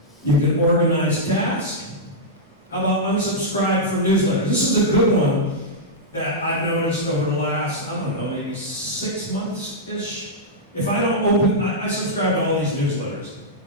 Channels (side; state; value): both; normal; correlation -0.08